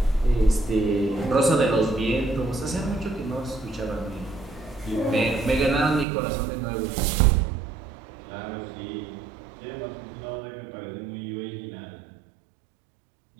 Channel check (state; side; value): drops out; left; at 6.1 s